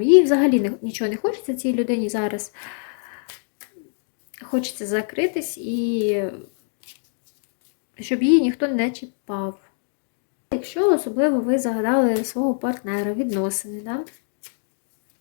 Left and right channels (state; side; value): silent; right; 63 dB below the other